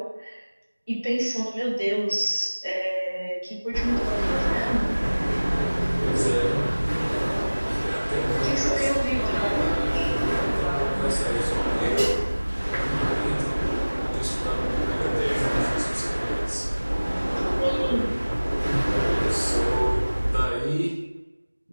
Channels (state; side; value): inverted; both; correlation -1.00